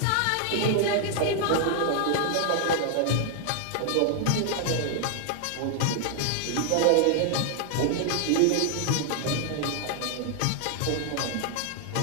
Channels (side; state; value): both; different; correlation 0.00